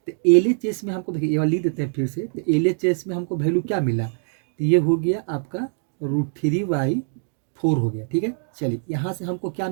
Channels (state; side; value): silent; left; digital silence